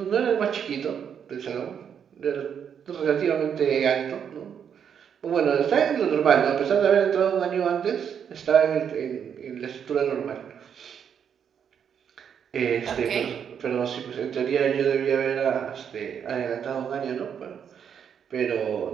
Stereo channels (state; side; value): quieter; left; 7.9 dB